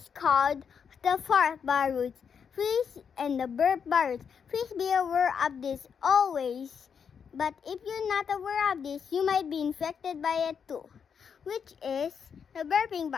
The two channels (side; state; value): right; quieter; 6.9 dB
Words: called the fart virus. And the burp virus. Please be aware of this always. But if you're not aware of this, you might be infected by it too, which is the burping